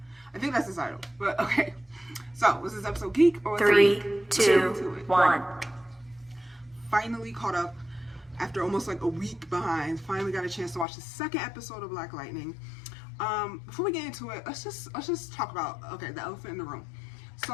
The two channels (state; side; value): drops out; right; at 10.9 s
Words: I think that's the title. But okay. So, was this episode Geek or 3, 2, 1. Finally caught up after almost like a week behind. Finally got a chance to watch the second episode of Black Lightning. Before we get into it, let's just talk about the elephant in the room.